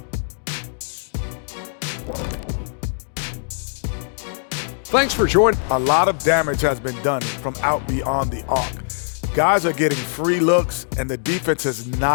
Thanks for joining. A lot of damage has been done from out beyond the arc. Guys are getting free looks, and the defense has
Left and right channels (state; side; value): silent; right; digital silence